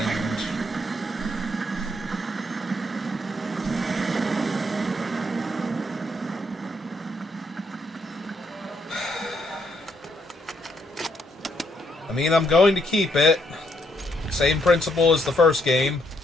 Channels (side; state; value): both; normal; correlation 0.74